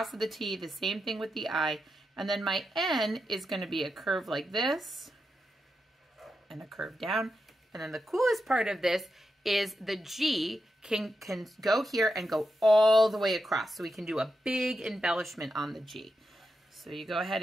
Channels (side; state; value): both; normal; correlation 0.87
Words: of the T, the same thing with the I, and then my N is going to be a curve like this, and a curve down. And then the coolest part of this is the G can go here and go all the way across. So we can do a big embellishment on the G. So you go ahead